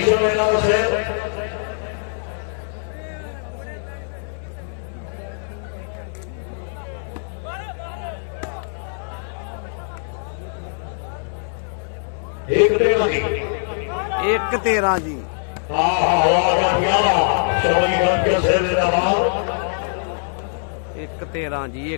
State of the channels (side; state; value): right; silent; digital silence